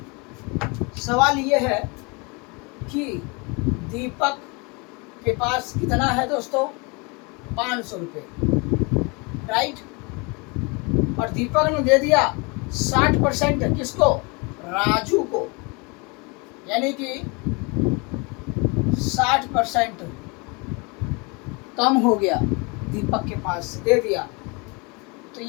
सवाल ये है कि दीपक के पास कितना है दोस्तों, 500 रुपये, राइट। और दीपक ने दे दिया 60% किसको, राजू को, यानी कि 60% कम हो गया, दीपक के पास दे दिया। तो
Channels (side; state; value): right; quieter; 29.5 dB